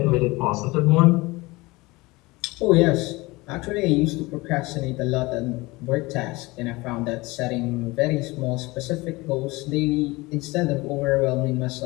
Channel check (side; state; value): right; quieter; 22.5 dB